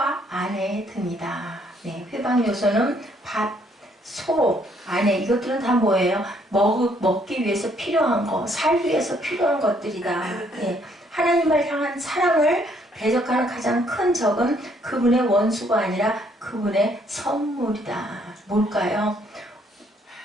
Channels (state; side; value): normal; both; correlation 0.67